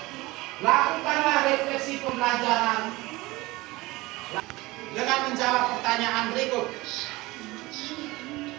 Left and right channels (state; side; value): quieter; left; 20.8 dB